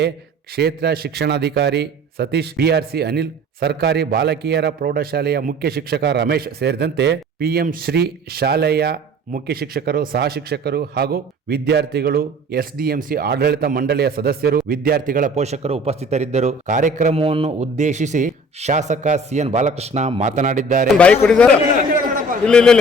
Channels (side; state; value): both; normal; correlation 0.47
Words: ಕ್ಷೇತ್ರ ಶಿಕ್ಷಣಾಧಿಕಾರಿ ಸತೀಶ್, ಬಿಆರ್ಸಿ ಅನಿಲ್, ಸರ್ಕಾರಿ ಬಾಲಕಿಯರ ಪ್ರೌಢಶಾಲೆಯ ಮುಖ್ಯ ಶಿಕ್ಷಕ ರಮೇಶ್ ಸೇರಿದಂತೆ ಪಿಎಂ ಶ್ರೀ ಶಾಲೆಯ ಮುಖ್ಯ ಶಿಕ್ಷಕರು, ಸಹ ಶಿಕ್ಷಕರು ಹಾಗೂ ವಿದ್ಯಾರ್ಥಿಗಳು, ಎಸ್ಡಿಎಂಸಿ ಆಡಳಿತ ಮಂಡಳಿಯ ಸದಸ್ಯರು, ವಿದ್ಯಾರ್ಥಿಗಳ ಪೋಷಕರು ಉಪಸ್ಥಿತರಿದ್ದರು. ಕಾರ್ಯಕ್ರಮವನ್ನು ಉದ್ದೇಶಿಸಿ ಶಾಸಕ ಸಿಎನ್ ಬಾಲಕೃಷ್ಣ ಮಾತನಾಡಿದ್ದಾರೆ.